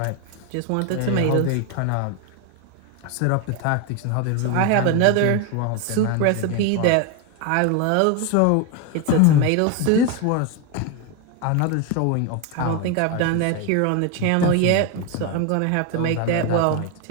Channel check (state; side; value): different; both; correlation 0.02